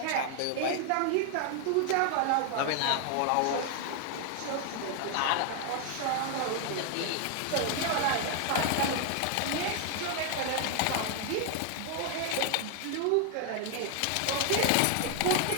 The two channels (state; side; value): different; both; correlation 0.00